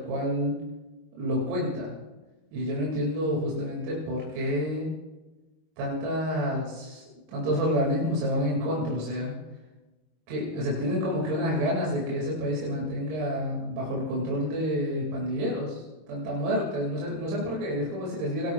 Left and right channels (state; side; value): late; left; 26 ms